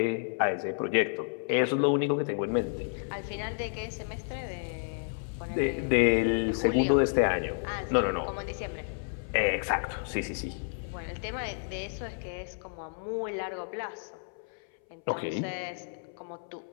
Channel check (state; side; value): silent; right; 57 dB below the other